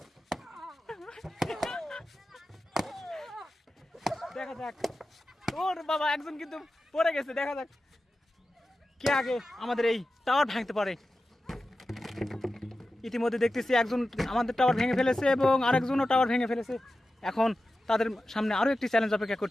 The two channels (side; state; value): both; normal; correlation 0.93